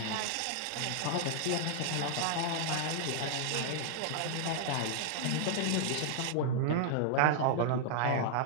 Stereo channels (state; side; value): different; both; correlation 0.00